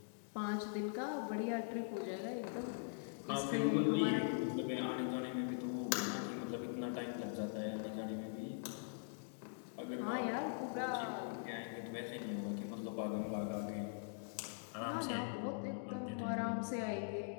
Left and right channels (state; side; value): silent; right; digital silence